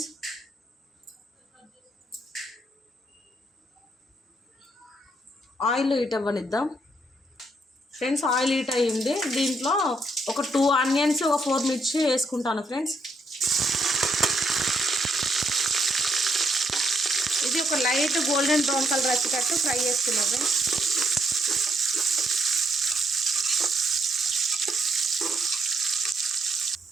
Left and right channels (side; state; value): both; normal; correlation 0.74